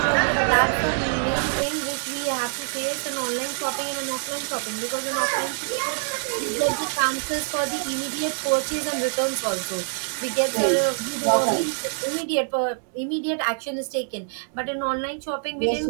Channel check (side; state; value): left; silent; digital silence